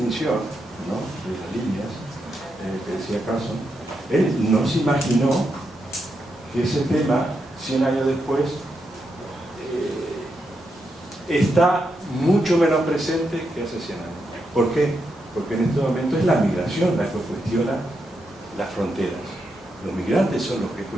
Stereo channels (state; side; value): normal; both; correlation 0.83